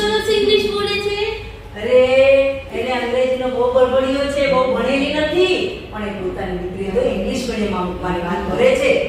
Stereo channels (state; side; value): identical; both; correlation 1.00